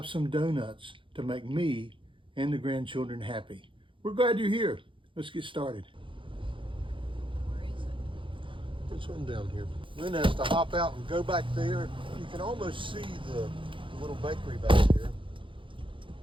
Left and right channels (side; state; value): left; late; 0.25 ms